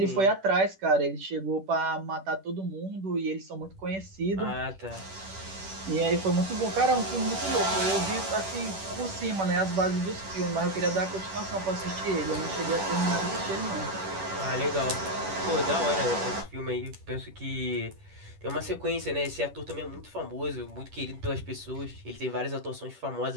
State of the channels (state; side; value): late; left; 10 ms